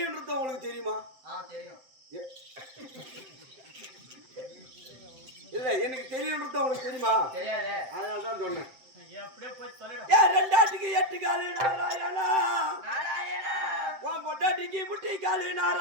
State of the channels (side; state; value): left; late; 7.8 ms